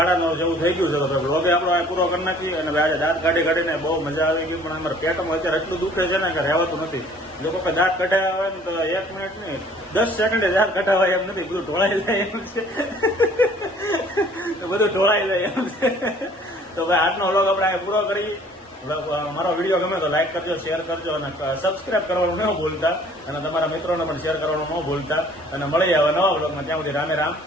જેવું થઈ ગયું છે. તો બ્લોગે આપણો અહીં પૂરો કરી નાખીએ. અને આજે દાંત કાઢીને બહુ મજા આવી ગઈ, પણ અમારા પેટમાં અત્યારે એટલું દુખે છે ને કે રહેવાતું નથી. લોકો કે દાંત કઢાવ્યા હોય ને તો 1 મિનિટ નહીં 10 સેકન્ડે દાંત કઢાવાય એમ નથી, બધું ઢોળાઈ જાય એમ છે. બધું ઢોળાઈ જાય એમ છે. તો ભાઈ આજનો વ્લોગ આપણે અહીં પૂરો કરી. મારો વિડીયો ગમે તો લાઈક કરજો, શેર કરજો અને સબસ્ક્રાઇબ કરવાનું ન ભૂલતા, અને તમારા મિત્રોને પણ શેર કરવાનું ન ભૂલતા. અને મળી આવે નવા વ્લોગમાં, ત્યાં સુધી રામે રામ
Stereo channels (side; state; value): both; normal; correlation 0.54